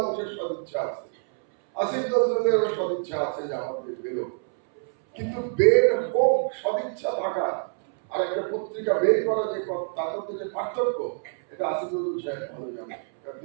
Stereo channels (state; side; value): silent; left; 61 dB below the other